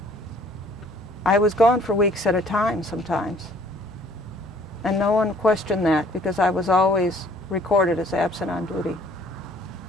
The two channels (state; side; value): normal; both; correlation 0.57